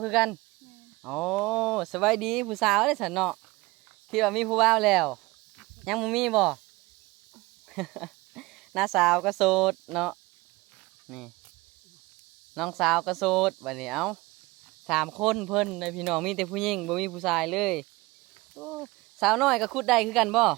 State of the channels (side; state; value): left; quieter; 22.1 dB